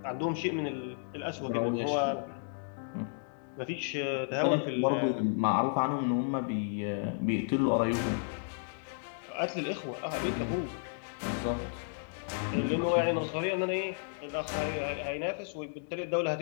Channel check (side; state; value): right; silent; digital silence